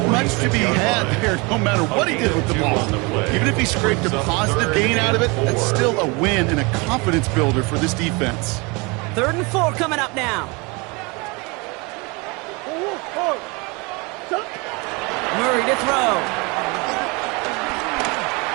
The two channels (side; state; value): left; quieter; 28.0 dB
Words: much to be had there no matter what he did with the ball. Even if he scraped a positive gain out of it, that's still a win and a confidence builder for this defense. 3rd and 4 coming up now. Murray to throw.